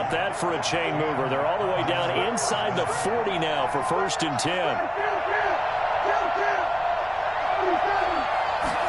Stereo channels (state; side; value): identical; both; correlation 1.00